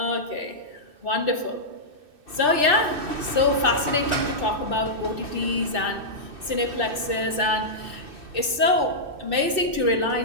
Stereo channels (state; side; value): late; left; 2.6 ms